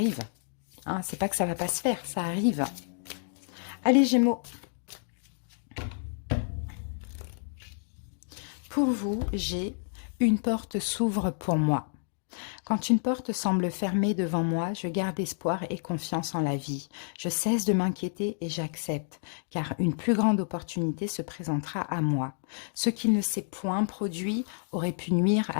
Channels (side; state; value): right; silent; digital silence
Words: Hein, c'est pas que ça va pas se faire, ça arrive. Allez, Gémeaux. Pour vous, j'ai une porte s'ouvre pour moi. Quand une porte semble fermée devant moi, je garde espoir et confiance en la vie. Je cesse de m'inquiéter et j'accepte, car une plus grande opportunité se présentera à moi. Ce qui ne s'est point produit aurait pu nuire